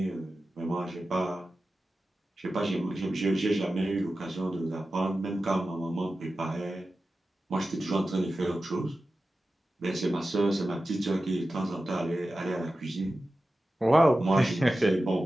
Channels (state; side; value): normal; both; correlation 0.94